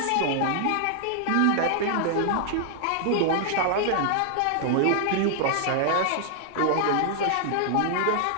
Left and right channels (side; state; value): both; different; correlation -0.01